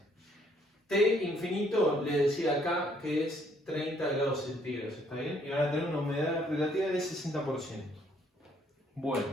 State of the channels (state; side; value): normal; both; correlation 0.66